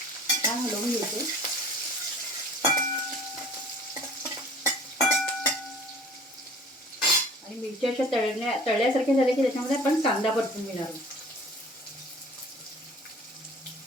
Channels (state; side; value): normal; both; correlation 0.47